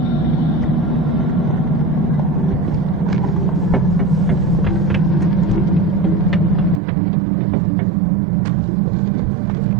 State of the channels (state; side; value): drops out; left; at 6.8 s